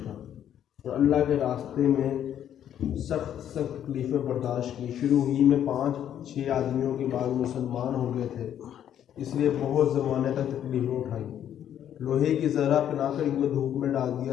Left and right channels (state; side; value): quieter; right; 10.2 dB